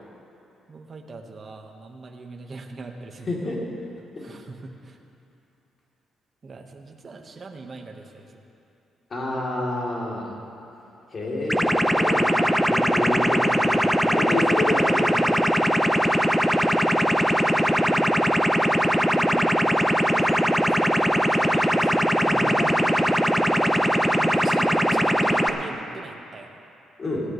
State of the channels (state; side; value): normal; both; correlation 0.94